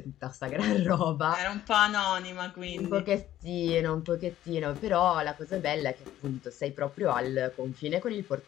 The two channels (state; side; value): quieter; right; 12.9 dB